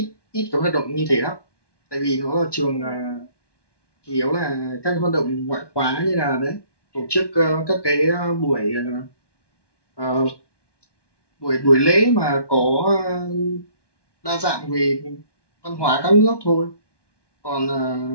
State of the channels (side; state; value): right; late; 1.1 ms